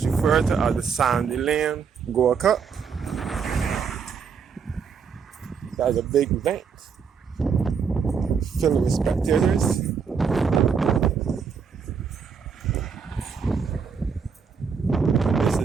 referred to as the Sandy Lane Gold Cup. That is a big event, filled with spectators.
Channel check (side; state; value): left; quieter; 6.1 dB